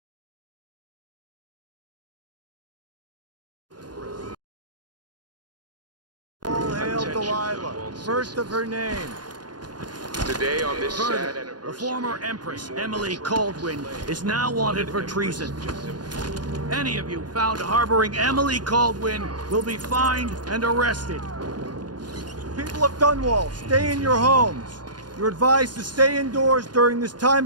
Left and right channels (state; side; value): late; left; 0.70 ms